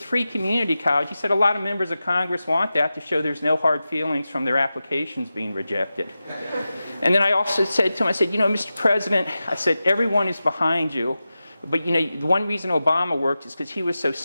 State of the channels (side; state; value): both; inverted; correlation -0.93